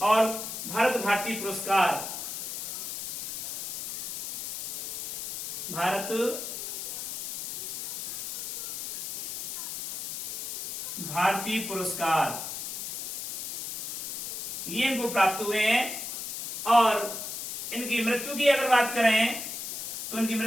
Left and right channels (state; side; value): noise; left; hiss, 5 dB below the sound